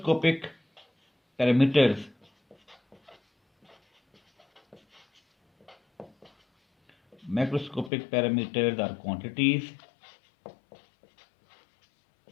parameters. Macroscopic parameters are quantities.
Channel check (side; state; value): right; drops out; at 7.9 s